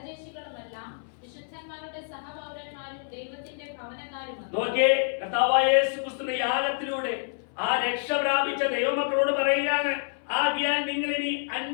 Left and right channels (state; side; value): silent; right; 60 dB below the other